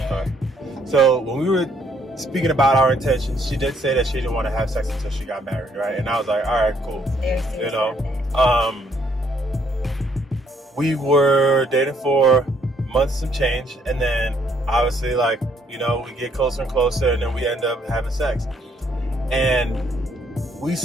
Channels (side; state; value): both; normal; correlation 0.68